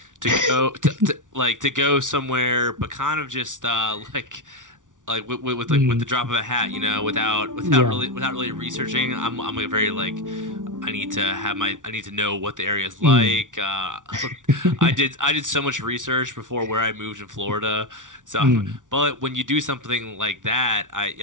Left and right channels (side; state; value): left; late; 0.87 ms